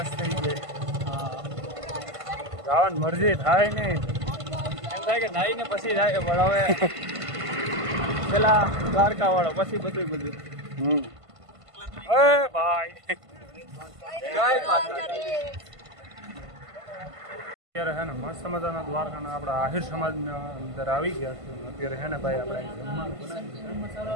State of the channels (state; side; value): late; left; 1.5 ms